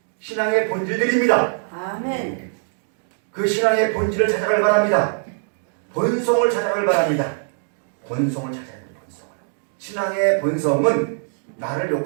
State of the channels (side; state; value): left; silent; digital silence